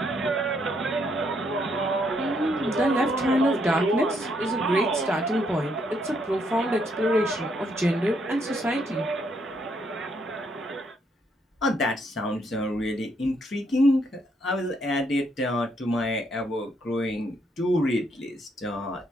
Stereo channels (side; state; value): both; normal; correlation 0.73